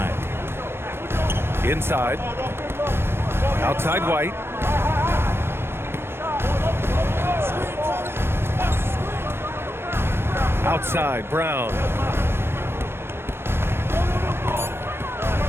Inside. Outside White. Outside Brown.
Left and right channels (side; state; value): left; late; 0.12 ms